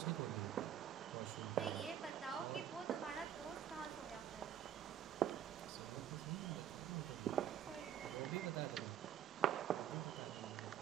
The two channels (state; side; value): quieter; left; 10.0 dB